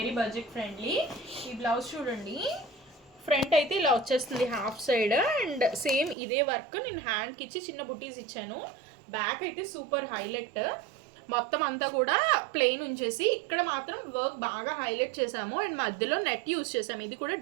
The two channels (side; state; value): left; drops out; at 6.2 s